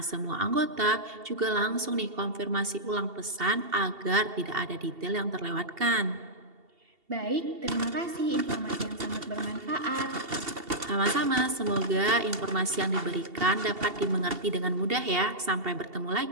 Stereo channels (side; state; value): left; late; 2.7 ms